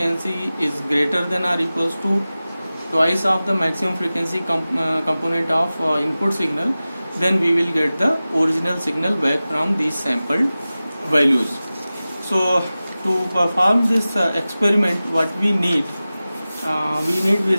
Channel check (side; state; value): both; inverted; correlation -0.96